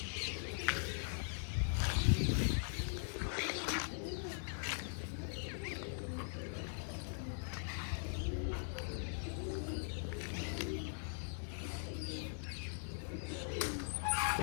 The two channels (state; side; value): silent; right; digital silence